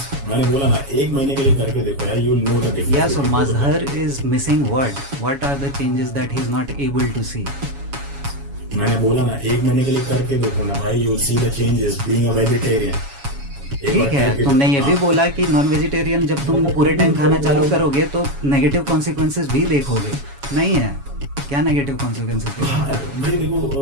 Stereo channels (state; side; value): late; left; 7.2 ms